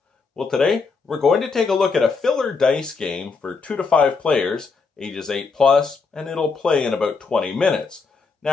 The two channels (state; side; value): quieter; right; 4.7 dB